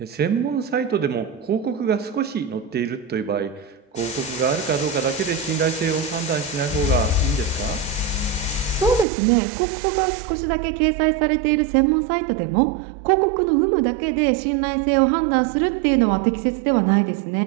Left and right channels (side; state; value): left; drops out; at 9.1 s